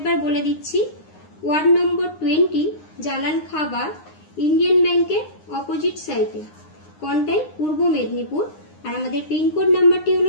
বলে দিচ্ছি। ওয়ার্ড নম্বর 20, জালান খাবার, ইন্ডিয়ান ব্যাংকের অপোজিট সাইডে, কন্টাই, পূর্ব মেদিনীপুর। আর আমাদের পিনকোড নাম্বারটি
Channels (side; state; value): right; late; 9.7 ms